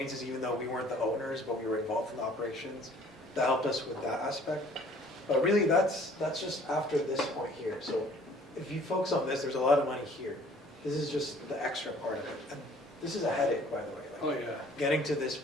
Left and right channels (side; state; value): both; normal; correlation 0.55